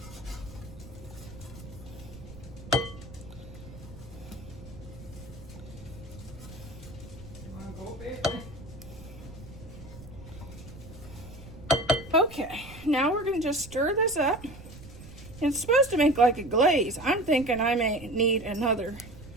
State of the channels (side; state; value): right; noise; rumble, 16 dB below the sound